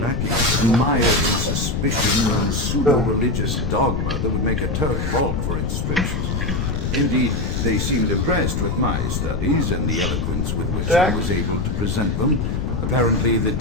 and mired in suspicion and pseudo-religious dogma that would make a Turk balk for inscriptions. Indeed, they seemed impressed with my studies and the eloquence with which I was able to present them. Apparently, the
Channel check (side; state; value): left; noise; rumble, 1 dB below the sound